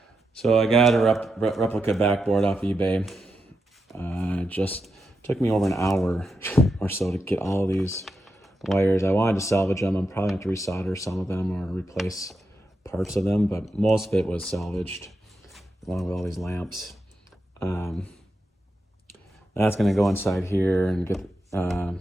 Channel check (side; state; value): both; normal; correlation 0.86